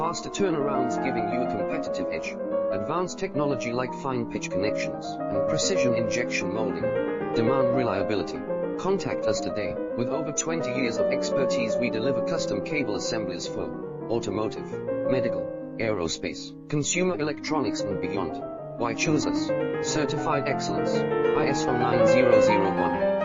turnarounds giving you a competitive edge. Advanced technology like fine pitch connections and precision injection molding. Demand reliability. Contact us today. With over 20 years of expertise, we deliver custom cable assemblies for automotive, medical, aerospace, consumer electronics and beyond. Why choose us? Certified excellence, ISO 9001,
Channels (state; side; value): identical; both; correlation 1.00